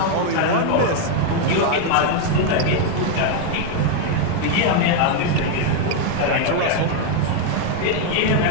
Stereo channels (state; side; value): different; both; correlation 0.01